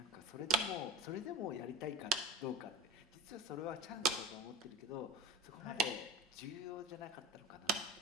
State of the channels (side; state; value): both; normal; correlation 0.32